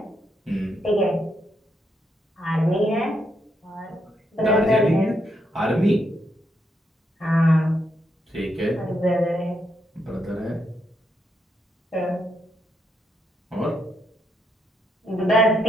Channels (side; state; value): both; normal; correlation 0.79